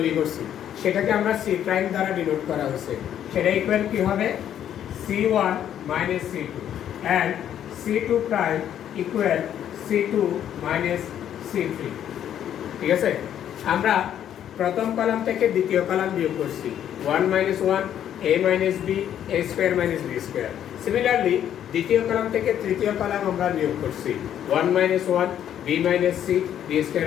করছি, সেটাকে আমরা c প্রাইম দ্বারা ডিনোট করা হয়েছে। সেটা ইকুয়াল কি হবে, c1 minus c2 and c2 prime equal c2 minus c3। ঠিক আছে, আমরা প্রথম কলাম থেকে দ্বিতীয় কলাম বিয়োগ করছি, 1 minus 1 a minus b a square minus b square। Similarly দ্বিতীয় কলাম থেকে তৃতীয় কলাম আমরা বিয়োগ করছি, 1 minus 1 b minus c b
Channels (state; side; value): quieter; right; 10.2 dB